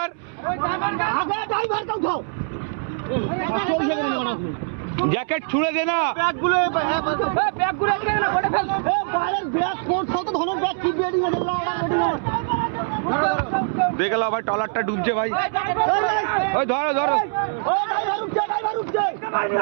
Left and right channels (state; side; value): silent; left; 64 dB below the other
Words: জ্যাকেট ছুঁড়ে দে না। দেখলাম ভাই ট্রলারটা ডুবছে ভাই। ওই ধরো ধরো,